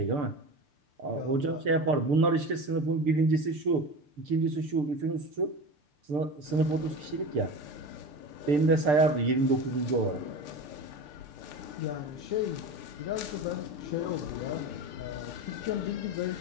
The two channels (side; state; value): left; late; 6.8 ms